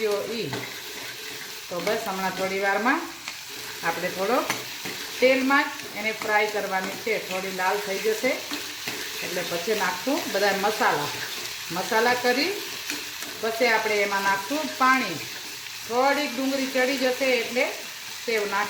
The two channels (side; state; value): both; identical; correlation 1.00